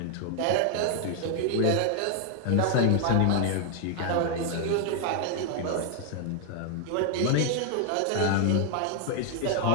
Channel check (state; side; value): different; both; correlation 0.00